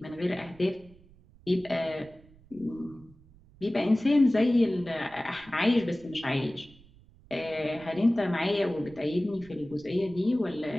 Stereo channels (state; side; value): noise; right; rumble, 25 dB below the sound